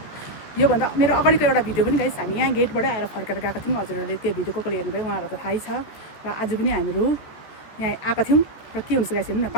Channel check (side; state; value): right; late; 14 ms